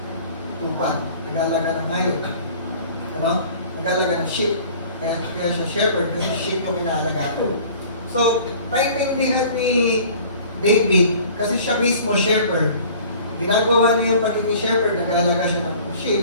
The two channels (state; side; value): inverted; both; correlation -0.48